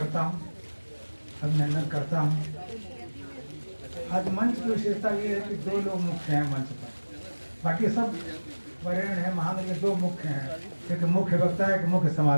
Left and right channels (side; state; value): both; inverted; correlation -1.00